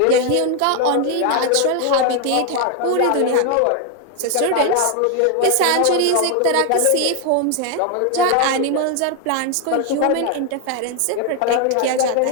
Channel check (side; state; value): both; different; correlation 0.01